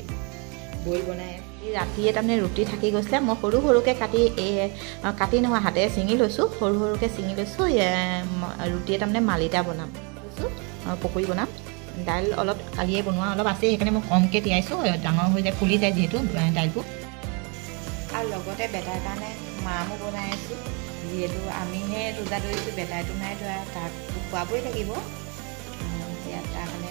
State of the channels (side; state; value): left; quieter; 33.3 dB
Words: বইল বনাই ৰাতিয়ে তাৰমানে ৰুটি থাকি গৈছিলে মই সৰুকৈ কাটি নহয় হাতেৰে ছিঙি লৈছোঁ সৰুকৈ ছিঙি লৈছোঁ ৰুটিয়ে তাৰমানে মালিতা বনাম লৈছোঁ পকৰি বনাম দাইল অলপ কালিয়ে বনোৱা অলপ আছে সেইকাৰণে মই কমকৈ তিয়াইছোঁ ডাঙৰ হৈ যায় ফুলি যায় যিহেতু দাইলটো আৰু লগতে বেটাৰ কাৰণে মামো বনাই আছোঁ যিহেতু আমিহে ৰোজা ধৰিছোঁ বেটাৰটো নাই ধৰা তাক খুৱাবই লাগিব ইয়াত তাৰ কাৰণে